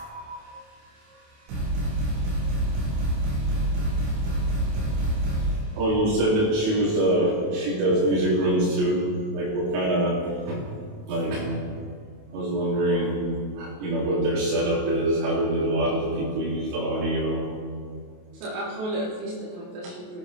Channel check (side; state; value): left; late; 28 ms